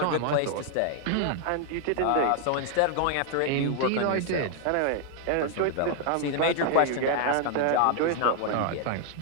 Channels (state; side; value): different; both; correlation 0.00